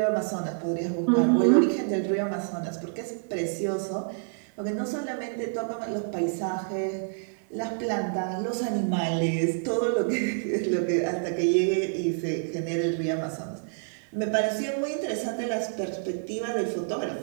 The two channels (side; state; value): left; silent; digital silence